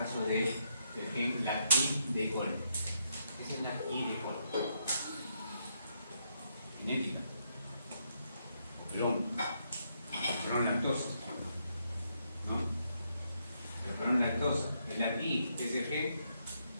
del gen LAC-I de cole. Esa es la I de cole. Genética. Perdón, lactosa. ¿No? Perdón, lactosa. El LAC-I es el gen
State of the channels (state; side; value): inverted; both; correlation -0.77